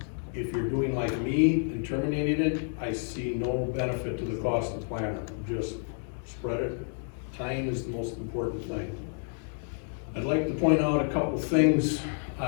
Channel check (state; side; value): silent; right; 58 dB below the other